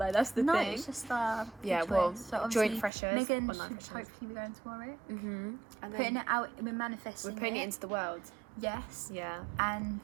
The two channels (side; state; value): left; drops out; at 2.9 s